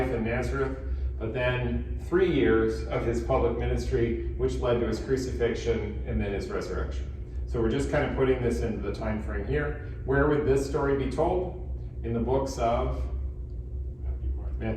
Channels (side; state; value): both; identical; correlation 1.00